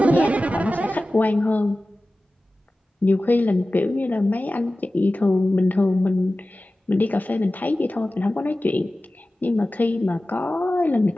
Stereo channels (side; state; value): both; normal; correlation 0.96